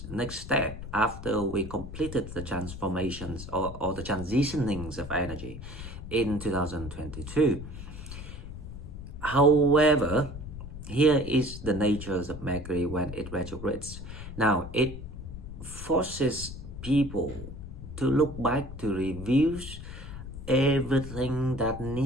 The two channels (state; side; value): noise; left; rumble, 10 dB below the sound